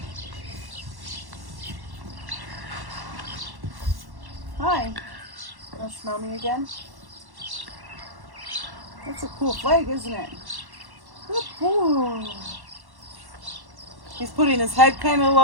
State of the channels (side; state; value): left; late; 1.1 ms